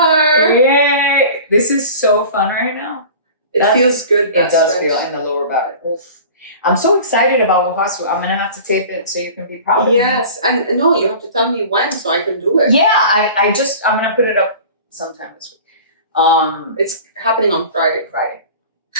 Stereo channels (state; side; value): inverted; both; correlation -0.40